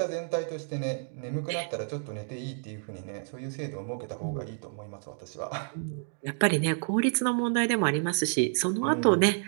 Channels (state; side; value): silent; left; digital silence